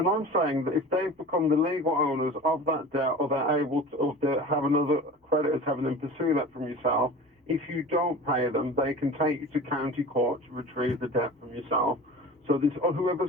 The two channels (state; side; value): normal; both; correlation 0.37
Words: I'm saying that if they've become the legal owners of that debt, or they're able to, or they have another creditors having them pursue that from yourself, If you don't pay them, they can take you to county court to retrieve the debt from yourself. So this, or